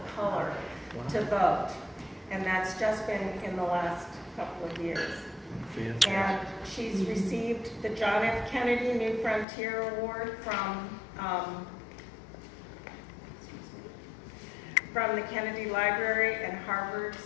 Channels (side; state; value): right; drops out; at 9.5 s